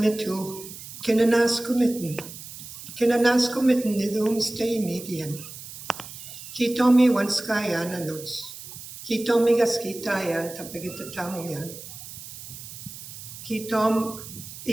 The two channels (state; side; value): noise; right; hiss, 13 dB below the sound